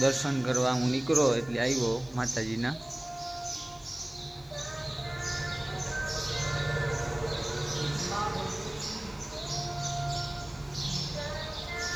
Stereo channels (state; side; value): noise; left; hiss, 27 dB below the sound